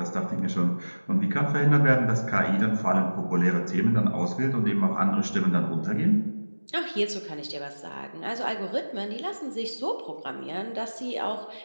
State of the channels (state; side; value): inverted; both; correlation -1.00